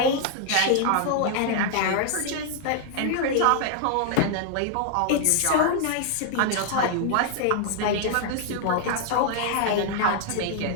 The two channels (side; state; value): both; different; correlation 0.00